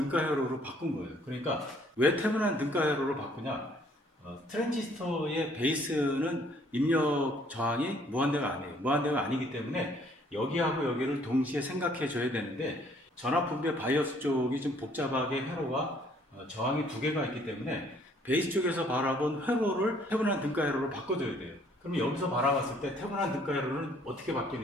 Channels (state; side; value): normal; both; correlation 0.62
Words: 회로로 바꾼 거예요. 그러니까 왜 태분한 등가 회로로 바꾸냐? 트랜지스터의 베이스는 입력 저항이 무한대가 아니에요. 무한대가 아니기 때문에 여기하고 여기를 동시에 생각해 줘야 되는데 전압분배 바이어스 쪽이 좀 복잡하게 회로가 저항이 두 개가 있기 때문에 베이스 쪽에서 바라본 회로를 태분한 등가 회로로 바꿔줘야 돼요. 그럼 여기서 바라봤을 때 태분한 등가 회로는 어떻게